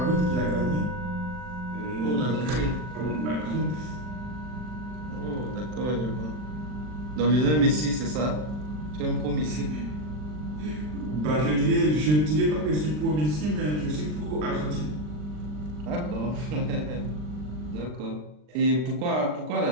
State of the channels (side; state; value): left; late; 39 ms